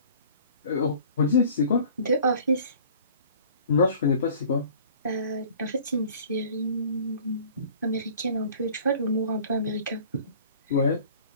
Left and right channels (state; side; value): inverted; both; correlation -0.48